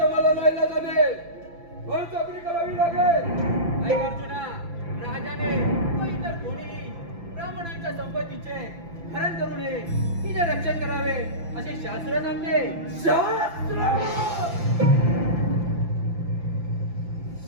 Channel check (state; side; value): late; left; 5.9 ms